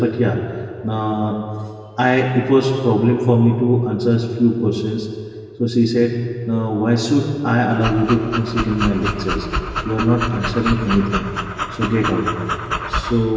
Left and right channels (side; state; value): both; identical; correlation 1.00